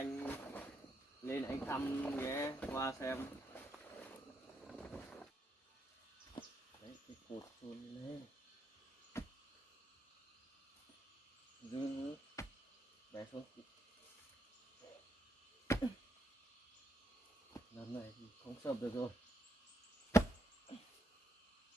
lên anh thăm nhé, qua xem. Đấy, cái cột chôn lên. Dư bé xuống. Lần này thì không sập được rồi.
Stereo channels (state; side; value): normal; both; correlation 0.79